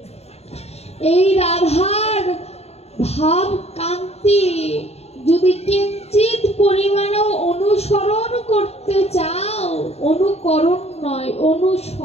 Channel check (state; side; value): late; right; 0.30 ms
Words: এই রাধার ভাব কান্তি যদি কিঞ্চিত পরিমাণেও অনুসরণ করতে চাও, অনুকরণ নয়